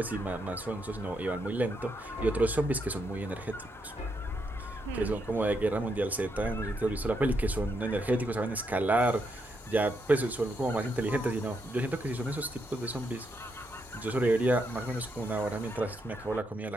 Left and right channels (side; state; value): both; normal; correlation 0.79